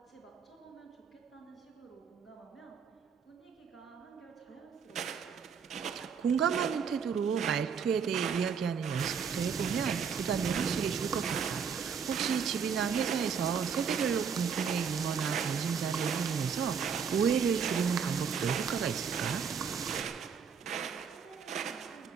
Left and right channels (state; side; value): quieter; left; 6.6 dB